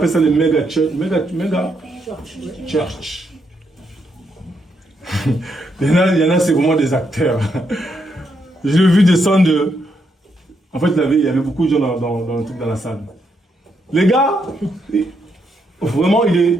ça le méga church. Méga church. il y en a c'est vraiment des acteurs. Je l'ai vu descendre. En fait, il y avait beaucoup de gens dans le truc dans la salle. Les gars, vraiment,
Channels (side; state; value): both; normal; correlation 0.78